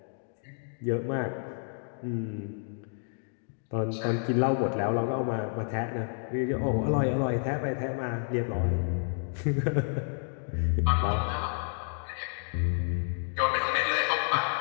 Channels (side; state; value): right; silent; 58 dB below the other